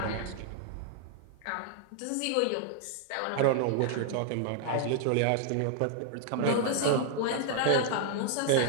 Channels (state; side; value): different; both; correlation 0.00